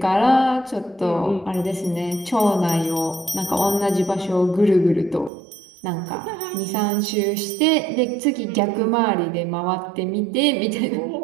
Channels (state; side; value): drops out; left; at 5.3 s